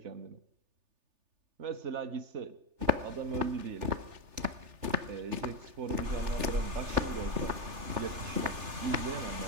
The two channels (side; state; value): left; late; 3.4 ms